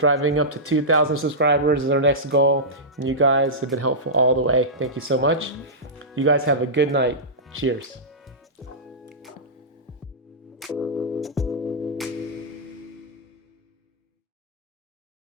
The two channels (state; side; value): normal; both; correlation -0.14